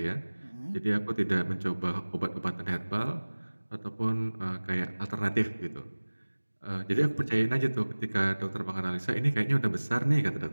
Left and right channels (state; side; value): inverted; both; correlation -1.00